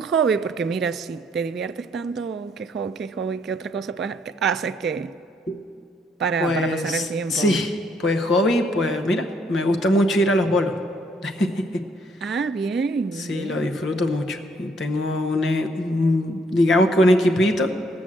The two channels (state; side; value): normal; both; correlation 0.69